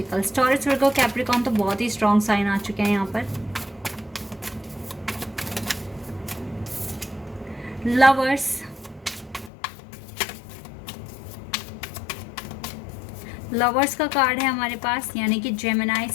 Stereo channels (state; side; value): drops out; right; at 9.5 s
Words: Taurus, Virgo, Capricorn तो बहुत ही स्ट्रॉन्ग साइन आ चुके हैं यहाँ पर। लवर्स, लवर्स का कार्ड है हमारे पास, यानी कि जेमिनाई